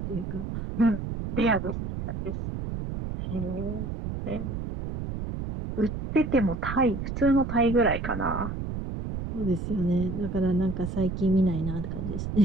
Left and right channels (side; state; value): right; noise; rumble, 5 dB below the sound